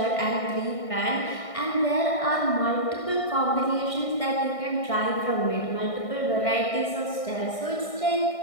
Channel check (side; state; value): right; late; 1.6 ms